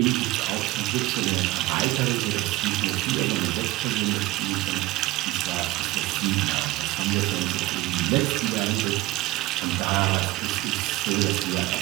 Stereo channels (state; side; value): quieter; left; 18.4 dB